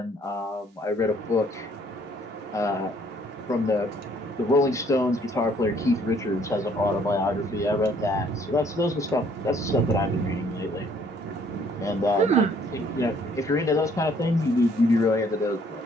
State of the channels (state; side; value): normal; both; correlation 0.62